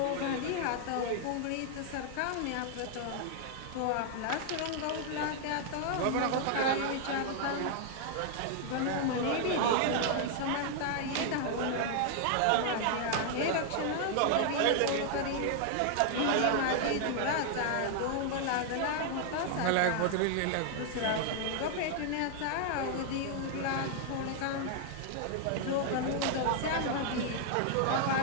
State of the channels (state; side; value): different; both; correlation 0.00